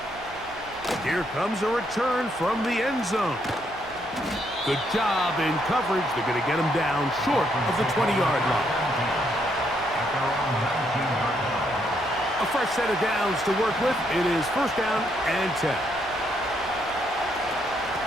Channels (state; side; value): noise; right; hum, 20 dB below the sound